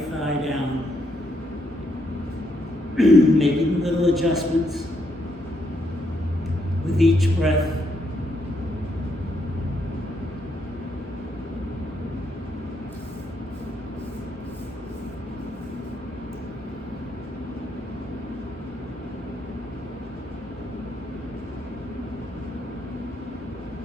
thigh down. Making little adjustments with each breath.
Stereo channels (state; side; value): normal; both; correlation 0.76